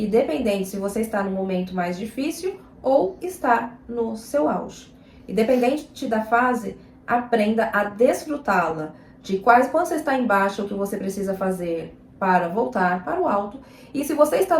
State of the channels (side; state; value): both; identical; correlation 1.00